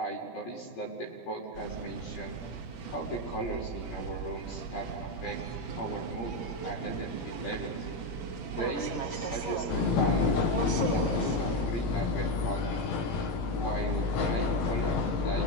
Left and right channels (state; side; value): late; right; 18 ms